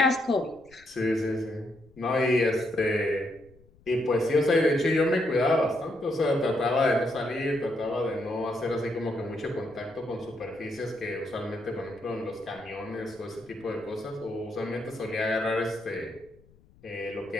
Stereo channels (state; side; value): noise; left; rumble, 28 dB below the sound